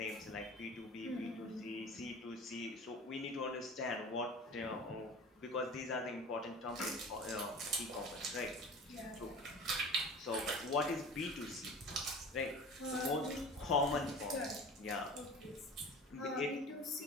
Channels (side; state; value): both; normal; correlation 0.38